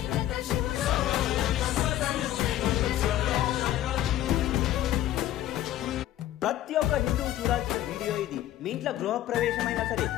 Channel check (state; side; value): quieter; right; 13.1 dB